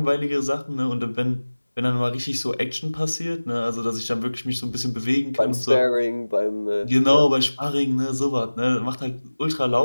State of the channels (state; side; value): inverted; both; correlation -1.00